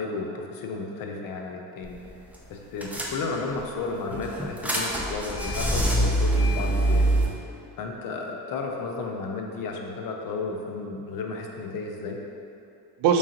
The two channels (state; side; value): normal; both; correlation 0.41